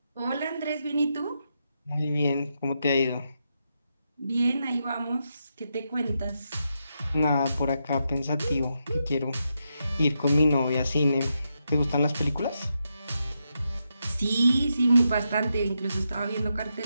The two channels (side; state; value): both; inverted; correlation -0.84